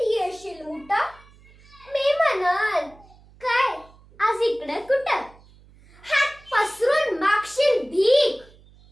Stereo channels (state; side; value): noise; right; hum, 26 dB below the sound